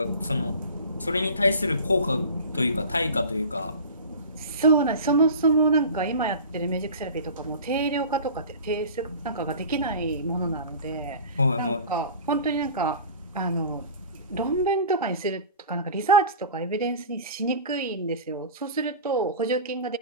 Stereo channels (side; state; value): both; inverted; correlation -0.37